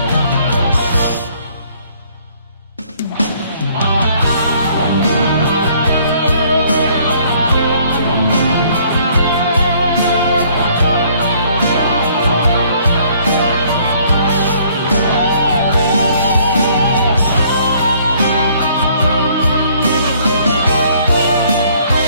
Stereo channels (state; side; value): inverted; both; correlation -0.61